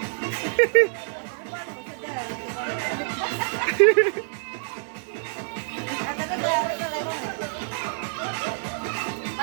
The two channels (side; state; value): left; silent; digital silence